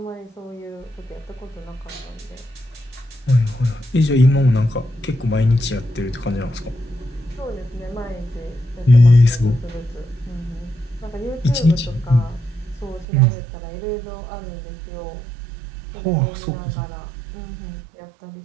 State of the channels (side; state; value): left; drops out; at 13.1 s